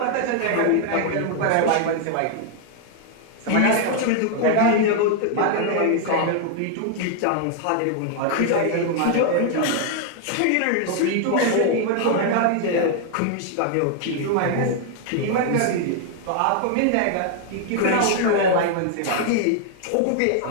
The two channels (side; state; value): both; different; correlation 0.00